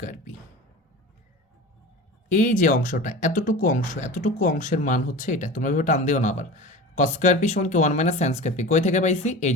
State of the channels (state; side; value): normal; both; correlation 0.33